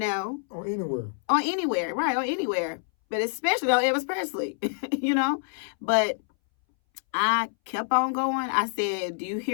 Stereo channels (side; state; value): right; silent; 60 dB below the other